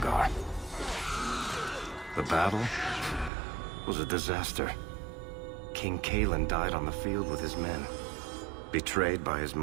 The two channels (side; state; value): left; drops out; at 3.3 s